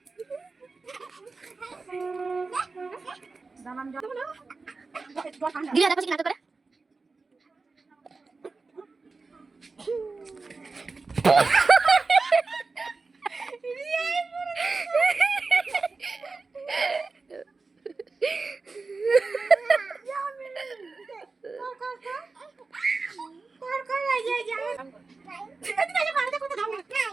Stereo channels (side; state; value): left; quieter; 4.0 dB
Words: দিদা দেখো কি নাটক করে